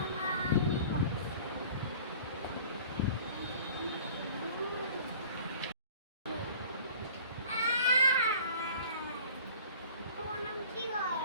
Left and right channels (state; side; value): inverted; both; correlation -0.46